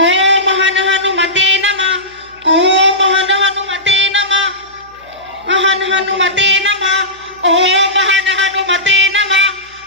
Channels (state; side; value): noise; right; hum, 28 dB below the sound